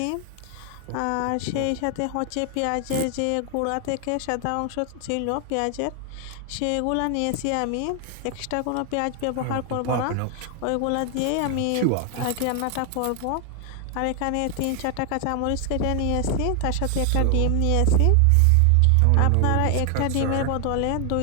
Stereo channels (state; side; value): different; both; correlation 0.00